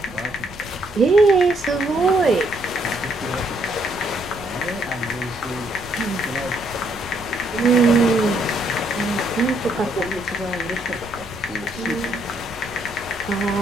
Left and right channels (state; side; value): noise; right; rumble, 21 dB below the sound